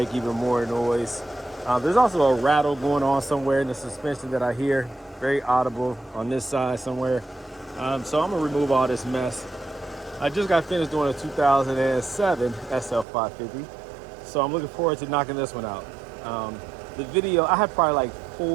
even more noise. There's also a rattle going on somewhere in the suspension that I hear, very audible on this side somewhere. So I'm gonna remove all this mess. I just got finished doing a 2007 SL550, so I'm looking forward to knocking this one out. The video, I have probably like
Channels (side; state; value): left; drops out; at 13.1 s